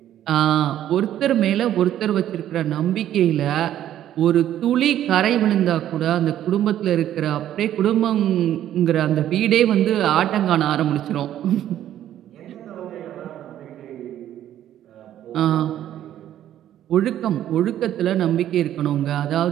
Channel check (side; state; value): left; quieter; 11.7 dB